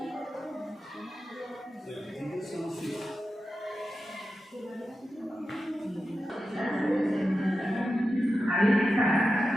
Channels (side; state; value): both; normal; correlation 0.91